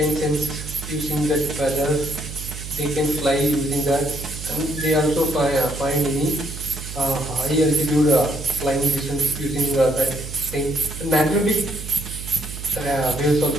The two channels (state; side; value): noise; right; hum, 11 dB below the sound